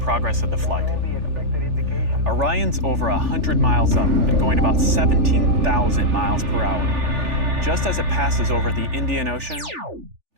of the flight. Orion's over 100 miles up and going about 17,000 miles per hour. Just as it passes over the Indian Ocean,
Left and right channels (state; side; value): late; left; 3.4 ms